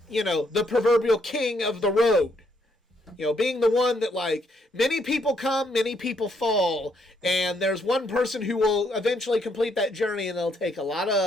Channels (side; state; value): both; normal; correlation 0.73